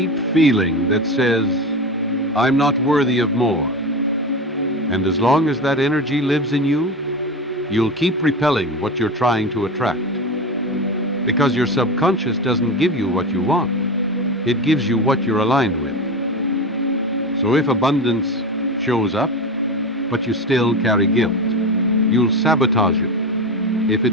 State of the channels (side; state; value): both; normal; correlation 0.23